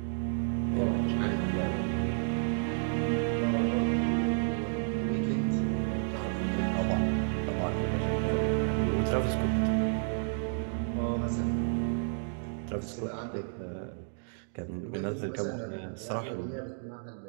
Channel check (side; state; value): left; silent; digital silence